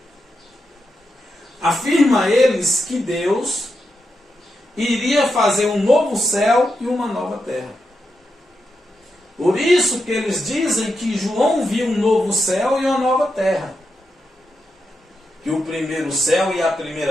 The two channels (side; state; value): both; normal; correlation 0.86